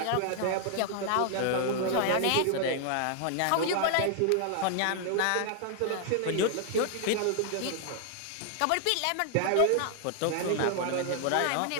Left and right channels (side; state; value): both; different; correlation 0.00